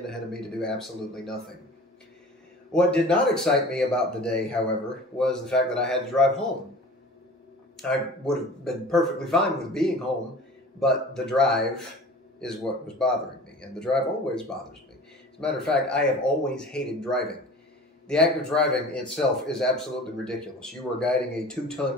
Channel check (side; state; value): both; normal; correlation 0.41